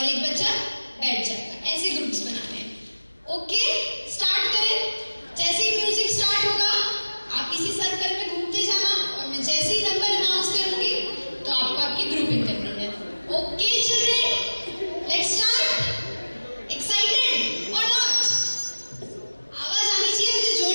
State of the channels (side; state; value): both; inverted; correlation -1.00